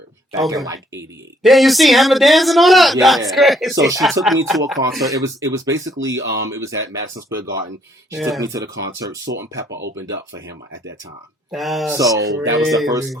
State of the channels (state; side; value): normal; both; correlation 0.67